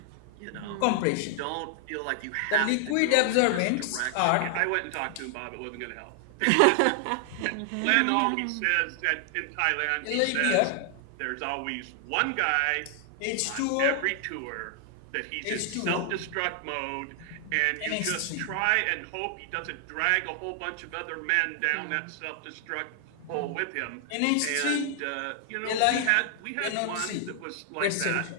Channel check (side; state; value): both; different; correlation 0.00